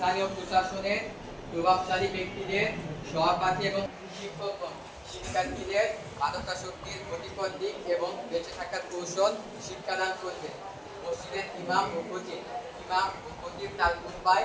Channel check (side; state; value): both; identical; correlation 1.00